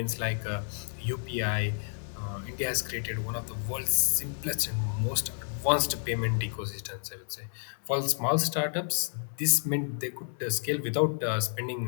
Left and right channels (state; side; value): silent; right; 58 dB below the other